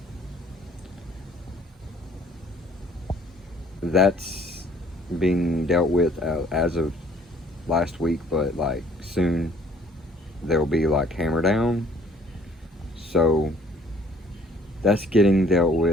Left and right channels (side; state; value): both; normal; correlation 0.58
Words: That's being dealt with as of last week, but like soon there'll be like hammer down. So that's getting dealt